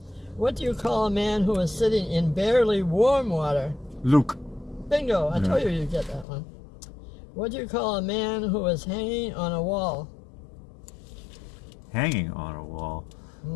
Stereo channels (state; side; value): drops out; right; at 6.2 s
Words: What do you call a man who is sitting in barely warm water? Luke. Bingo! I told you you'd get that one. What do you call a man who is hanging on a wall? Hanging on a wall.